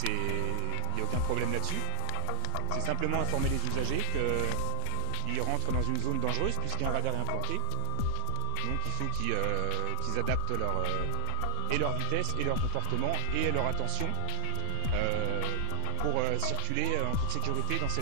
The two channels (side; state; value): both; different; correlation -0.01